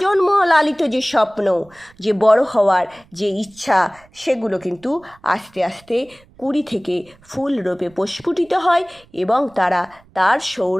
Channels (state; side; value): noise; right; rumble, 29 dB below the sound